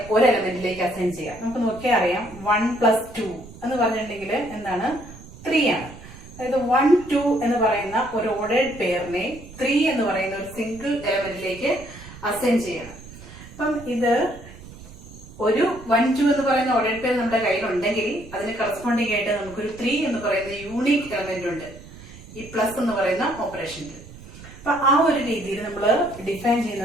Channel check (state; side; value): noise; right; rumble, 17 dB below the sound